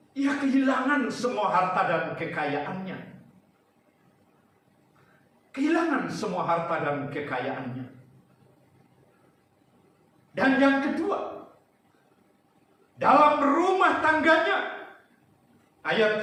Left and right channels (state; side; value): identical; both; correlation 1.00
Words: Ia kehilangan semua harta dan kekayaannya. kehilangan semua harta dan kekayaannya. Dan yang kedua, dalam rumah tangganya,